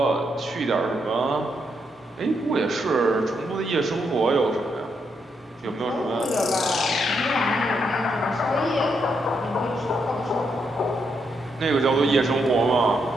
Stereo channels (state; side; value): normal; both; correlation 0.79